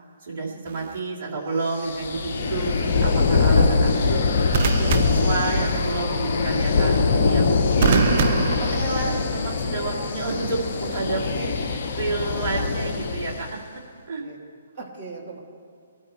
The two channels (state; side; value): inverted; both; correlation -0.68